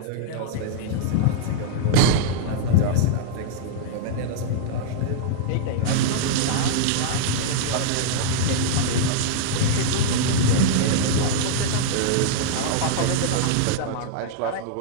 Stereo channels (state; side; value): different; both; correlation -0.02